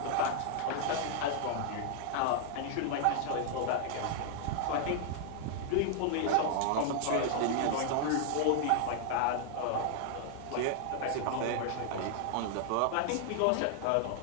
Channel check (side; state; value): both; different; correlation 0.00